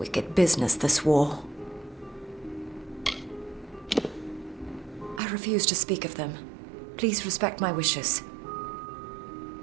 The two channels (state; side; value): drops out; left; at 5.2 s